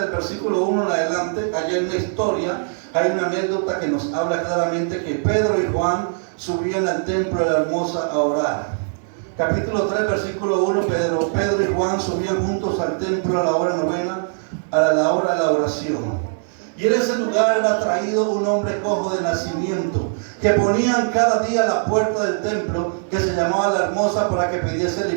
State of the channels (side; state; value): left; silent; digital silence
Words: versículo 1 en adelante. Allí hay una historia, hay una anécdota que nos habla claramente que Pedro y Juan subían al templo de la Hermosa a orar. Capítulo 3, versículo 1, Pedro y Juan subían juntos al templo a la hora novena, a la hora de la oración. Y en ese lugar era traído un hombre cojo de nacimiento, que ponían cada día a la puerta del templo, que se llamaba la Hermosa, para que pidiese